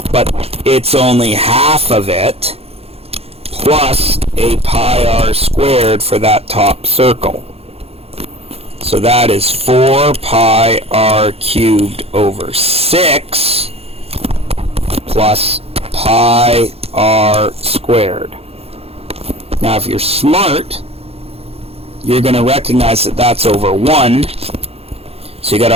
but it's only half of it, plus a pi r squared for that top circle. So that is 4 pi r cubed over 6 plus pi r squared. Now if you're smart, you're going to recognize that that's over 1. So you got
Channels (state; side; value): late; left; 0.29 ms